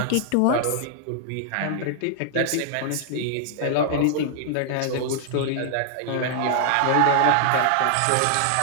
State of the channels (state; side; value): different; both; correlation -0.01